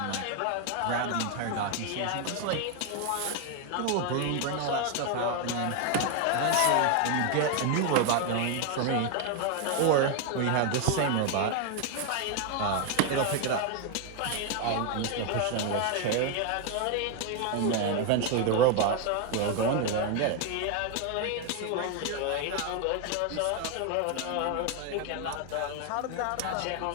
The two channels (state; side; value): different; both; correlation 0.01